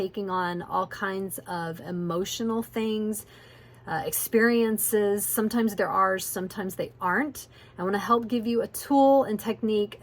on all kinds of emotional things, experiences. Sometimes they're ours, sometimes they aren't. I want to help give you a tool and technique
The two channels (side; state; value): both; identical; correlation 1.00